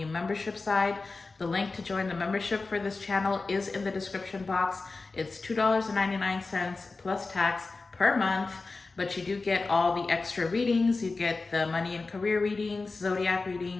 membership side. The link to join the membership for this channel is in the description box. It's $2.99 plus tax per month, but you do get all the extra readings. You get the money and career readings, zodiac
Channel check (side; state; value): right; quieter; 3.8 dB